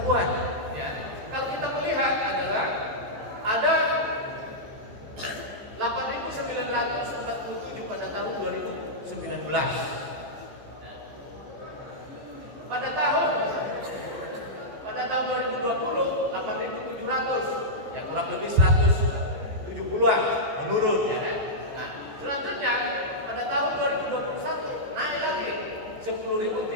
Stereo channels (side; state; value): left; late; 14 ms